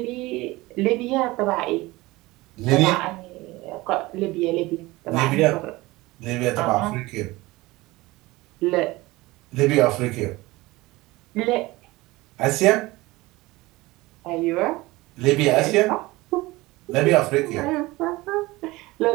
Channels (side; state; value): left; quieter; 20.5 dB